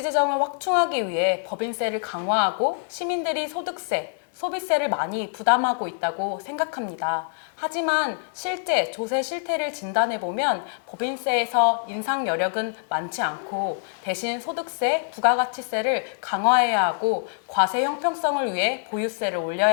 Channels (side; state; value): right; silent; digital silence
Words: 재정을 확충하기 위해 법인세를 강화하고 시민들이 소득세, 소비세를 많이 부담하고 있다고 생각합니다. 하지만 실제 조세 실태를 진단해보면 법인세에서 인상 여력은 많지 않고 대신 소득세, 부가가치세를 강화해야 하고 과세 형평성을 위해 보유세를